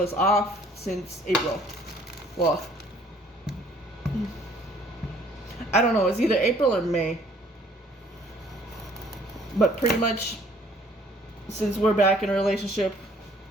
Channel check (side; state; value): both; normal; correlation 0.59